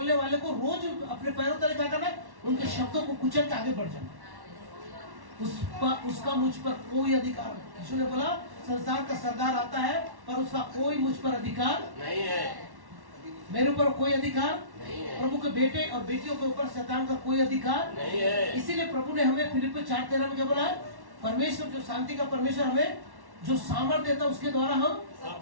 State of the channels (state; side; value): late; left; 1.1 ms